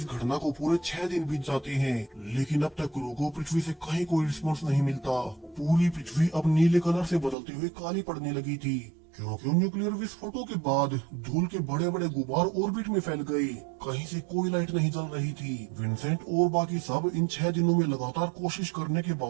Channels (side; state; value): left; drops out; at 7.4 s